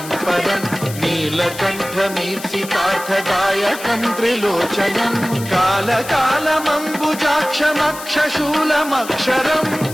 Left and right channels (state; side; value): noise; left; hiss, 13 dB below the sound